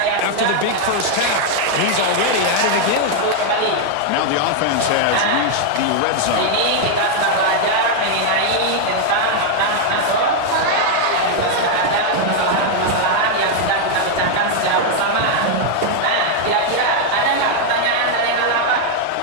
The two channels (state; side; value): different; both; correlation 0.00